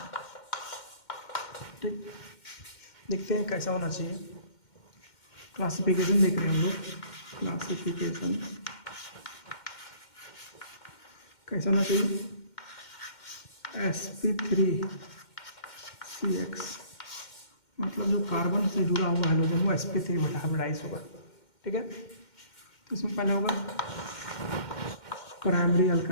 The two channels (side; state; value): right; late; 2.1 ms